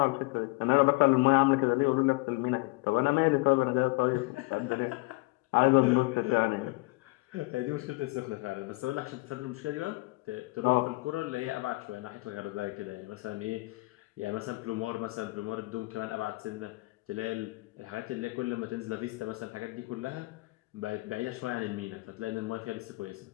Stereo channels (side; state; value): right; quieter; 24.4 dB